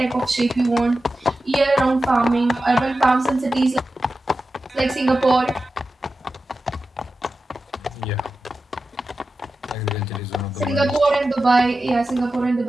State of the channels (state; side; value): normal; both; correlation 0.92